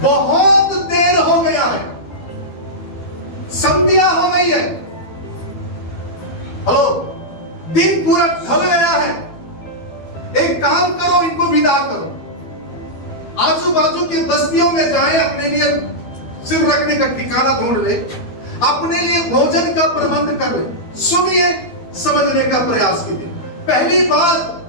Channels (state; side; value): late; right; 12 ms